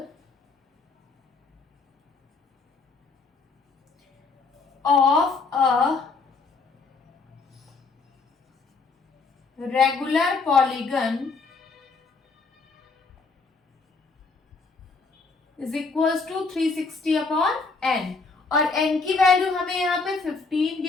of a regular polygon is equals to 360 upon n, और n की वैल्यू हमें यहाँ पे 15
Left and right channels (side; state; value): right; quieter; 4.3 dB